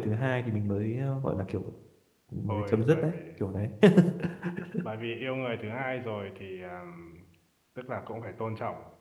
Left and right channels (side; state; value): both; identical; correlation 1.00